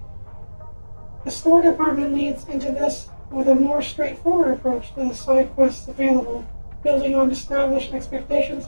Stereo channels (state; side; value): inverted; both; correlation -1.00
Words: The store department leads into this with a more straightforward approach to the side quests available, building on established expectations